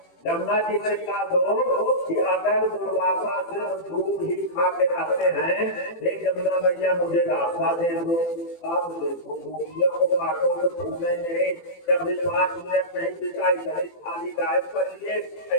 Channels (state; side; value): late; right; 18 ms